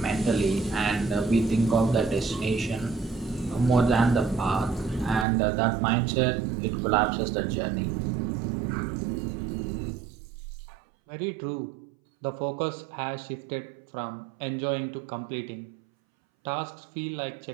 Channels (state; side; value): drops out; left; at 5.2 s